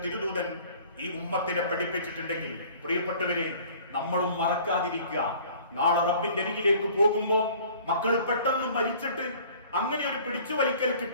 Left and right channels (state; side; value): inverted; both; correlation -0.51